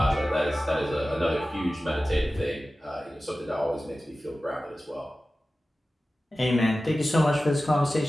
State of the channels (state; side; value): normal; both; correlation 0.95